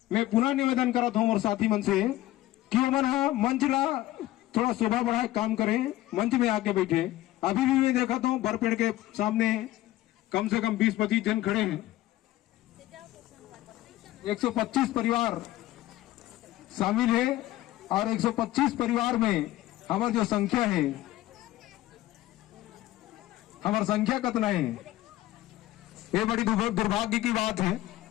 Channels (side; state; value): right; quieter; 15.9 dB